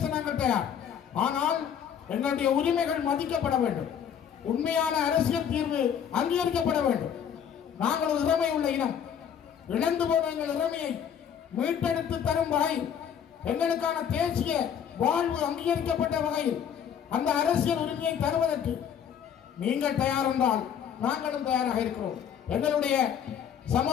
நாங்கள் தயார். ஆனால் எங்களுடைய உரிமைகள் மதிக்கப்பட வேண்டும். உண்மையான அரசியல் தீர்வு அங்கீகரிக்கப்பட வேண்டும். நாங்கள் ஒரு இறமை உள்ள இனம். இழந்து போன எங்கள் இறமையை மீட்டெடுத்து தரும் வகையில், எங்களுக்கான தேசிய வாழ்வு அங்கீகரிக்கப்பட்ட வகையில் அந்த அரசியல் உரிமையை தருவதற்கு நீங்கள் தயார் என்றால் நாங்களும் தயாராக இருக்கிறோம். எங்களுடைய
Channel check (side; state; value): right; quieter; 8.4 dB